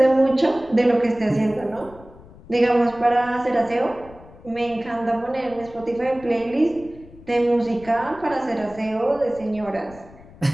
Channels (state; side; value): noise; left; rumble, 21 dB below the sound